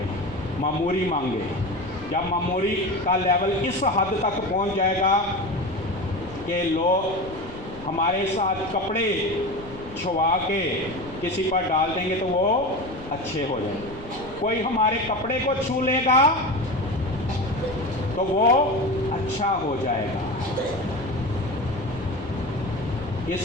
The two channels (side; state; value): left; noise; rumble, 17 dB below the sound